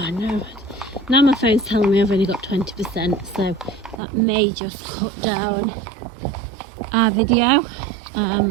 no, now my phone's telling me I've only got 20%, so that may just cut down our video.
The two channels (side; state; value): left; drops out; at 4.0 s